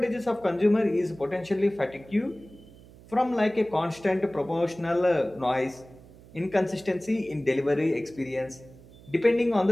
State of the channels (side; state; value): right; noise; hum, 22 dB below the sound